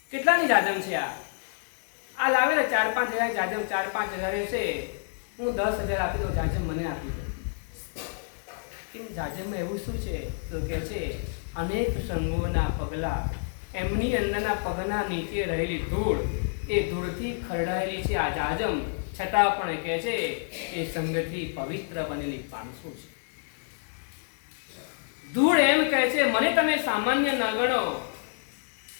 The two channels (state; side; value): silent; right; digital silence